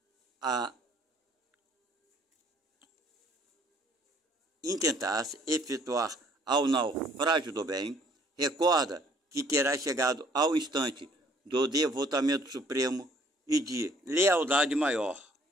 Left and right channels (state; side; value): normal; both; correlation 0.60